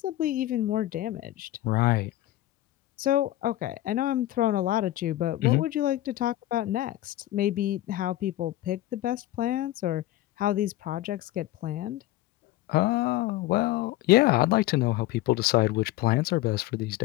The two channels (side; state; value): right; quieter; 15.4 dB